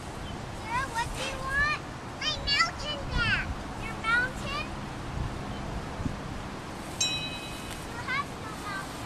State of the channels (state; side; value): identical; both; correlation 1.00